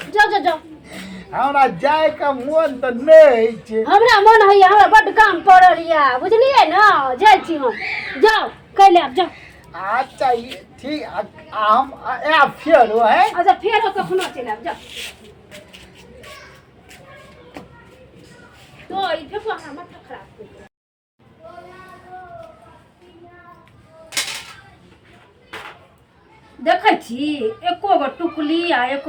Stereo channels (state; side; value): identical; both; correlation 1.00